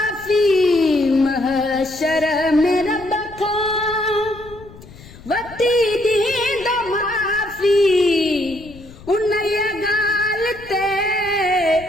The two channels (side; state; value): left; noise; rumble, 19 dB below the sound